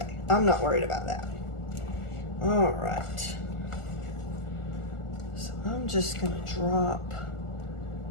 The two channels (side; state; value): right; late; 1.4 ms